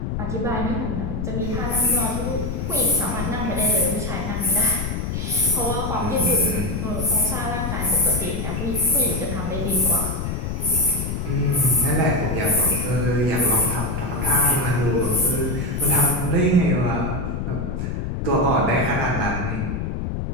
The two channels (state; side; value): noise; left; rumble, 3 dB below the sound